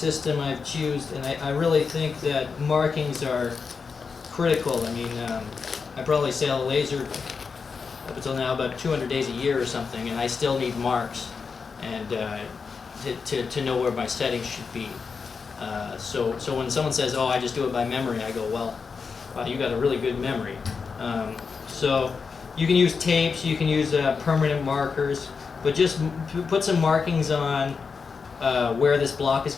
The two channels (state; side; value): quieter; right; 5.3 dB